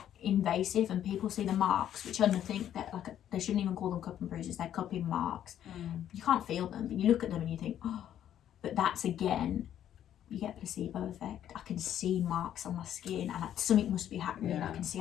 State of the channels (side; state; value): right; quieter; 10.7 dB